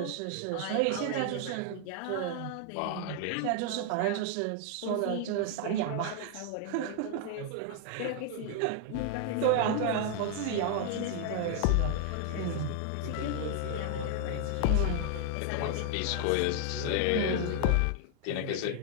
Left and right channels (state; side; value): different; both; correlation 0.00